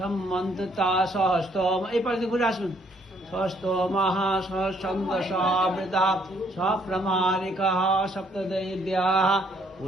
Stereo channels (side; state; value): both; normal; correlation 0.67